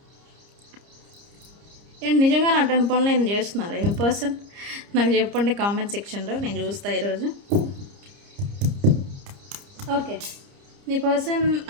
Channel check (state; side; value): late; left; 30 ms